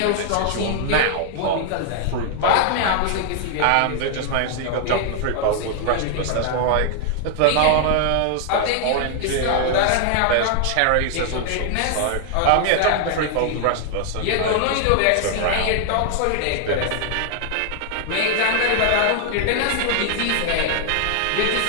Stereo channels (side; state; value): both; different; correlation 0.00